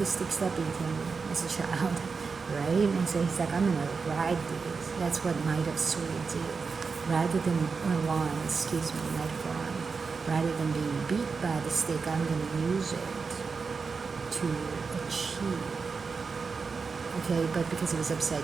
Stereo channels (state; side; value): quieter; left; 4.9 dB